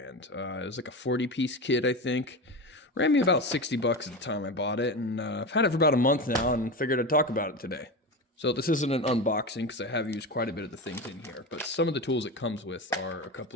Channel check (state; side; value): normal; both; correlation 0.22